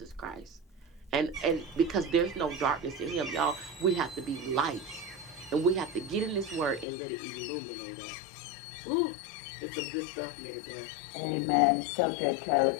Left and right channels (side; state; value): right; drops out; at 6.9 s